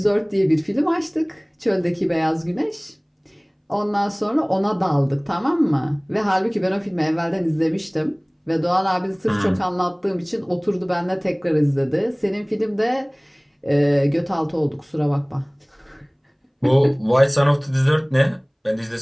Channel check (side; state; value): both; identical; correlation 1.00